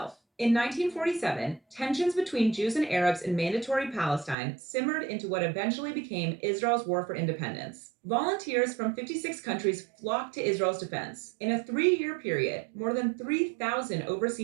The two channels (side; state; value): left; drops out; at 4.4 s